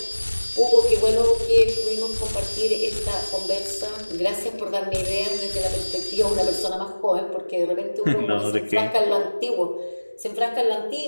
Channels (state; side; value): inverted; both; correlation -1.00